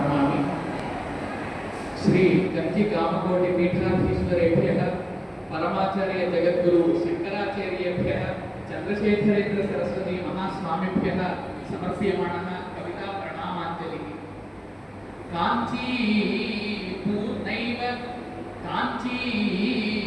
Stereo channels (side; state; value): both; identical; correlation 1.00